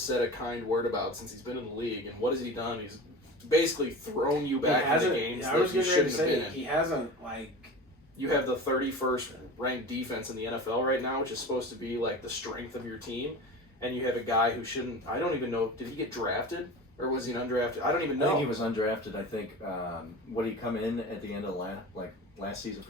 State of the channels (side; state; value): both; normal; correlation 0.33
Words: said a kind word about since he's been in the league, and what has he done? He's basically thrown you back into games that you shouldn't have been in. He hasn't, like... You have the 31st ranked defense in the NFL right now, which is supposed to be like the strength of your team, and you have a guy who shouldn't... I don't even know. Did he get drafted? Or was he an undrafted? I don't even know. I think he was undrafted. I think, would he come in at the end of last season